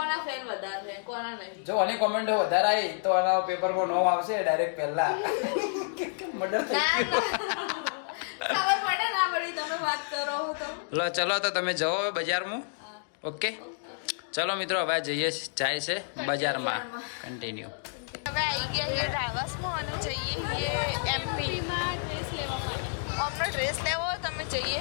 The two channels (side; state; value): right; silent; digital silence